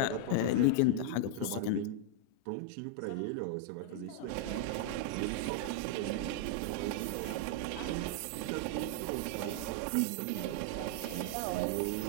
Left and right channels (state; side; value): different; both; correlation 0.00